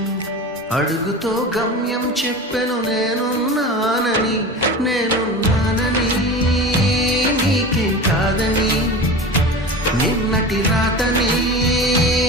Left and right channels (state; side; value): normal; both; correlation 0.31